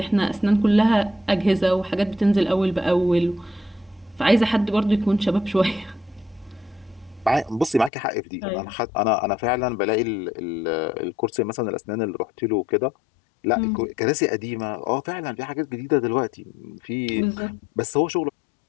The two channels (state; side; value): drops out; right; at 7.9 s